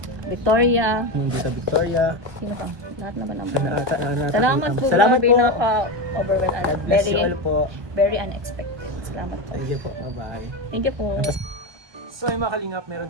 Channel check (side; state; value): left; late; 1.2 ms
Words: Victoria. Tita Victoria. Sino pa? Lahat naman naman. Salamat Salamat po. po. Grabe, naka-overwhelmed. God bless you all po. Very unexpected. Salamat po. Thank you po. Bye-bye. Thank you po. So ay mga kalingap,